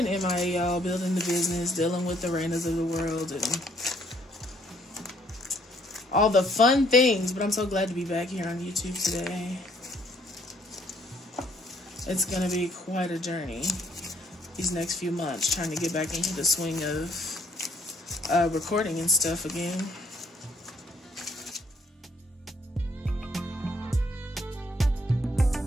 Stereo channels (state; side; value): normal; both; correlation 0.66